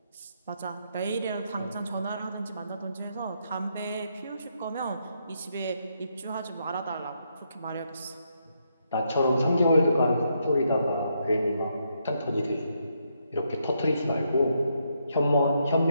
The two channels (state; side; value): inverted; both; correlation -0.78